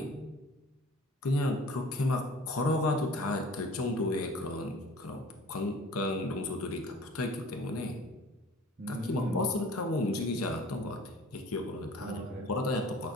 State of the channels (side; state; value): both; normal; correlation 0.47